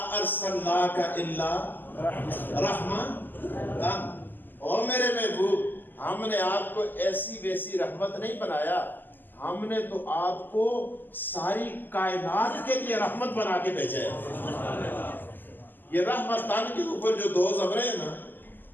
ارسلناک الا رحمت او میرے محبوب ہم نے آپ کو ایسی ویسی رحمت نہیں بنایا ہم نے تو آپ کو ساری کائنات کے لیے رحمت بنا کے بھیجا ہے یہ رحمت تن کے اوپر جو دو زبریں ہیں نا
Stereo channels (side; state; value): right; late; 0.090 ms